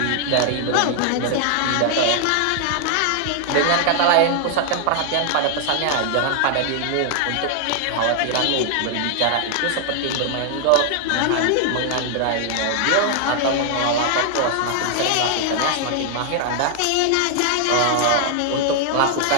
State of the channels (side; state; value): both; different; correlation 0.00